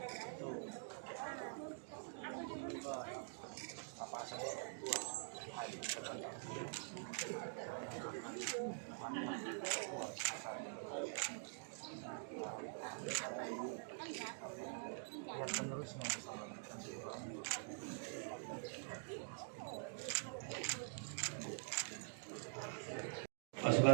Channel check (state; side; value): silent; left; digital silence